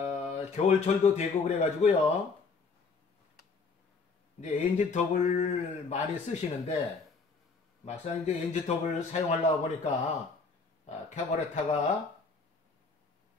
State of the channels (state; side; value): quieter; right; 4.5 dB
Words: 겨울철도 되고 그래가지고요. 이제 엔진톱을 많이 쓰시는데, 막상 이제 엔진톱을 사용하려고 보니까, 카부레터가